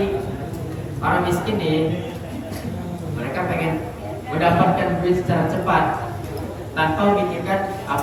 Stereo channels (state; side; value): identical; both; correlation 1.00